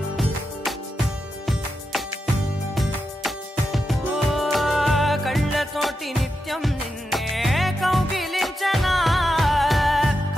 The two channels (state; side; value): normal; both; correlation 0.87